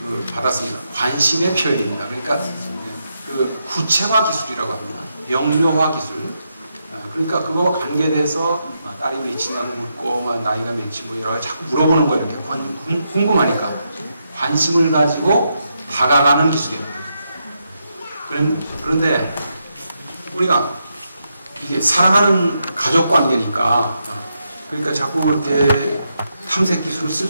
받았습니다. 관심의 표현입니다. 그러니까 그 구체화 기술이라고 합니다. 명료화 기술. 그러니까 그거와 관계돼서 딸이 몇이냐고 묻고 나이가 몇이 뭐 여러 가지 자꾸 물어보는 거예요. 이렇게 궁금하니까 관심을 가지고 다가가는 기술입니다. 그런데 우리가 이게 사랑하는 가족 관계니까 그러니까 자꾸 이렇게 탐색 기술을 쓸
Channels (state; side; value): inverted; both; correlation -0.83